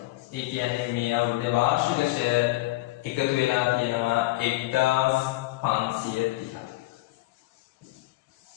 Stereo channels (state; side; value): quieter; right; 18.8 dB